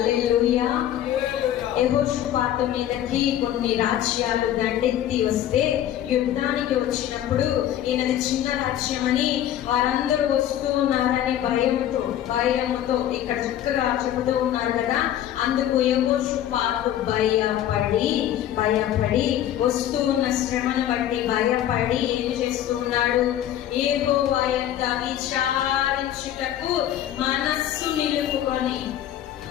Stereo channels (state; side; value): quieter; right; 11.5 dB